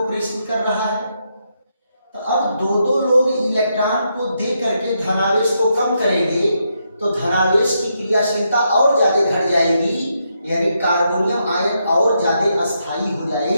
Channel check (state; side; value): inverted; both; correlation -0.80